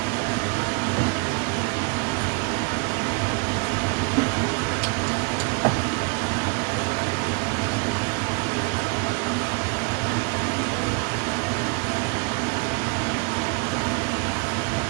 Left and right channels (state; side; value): quieter; left; 32.5 dB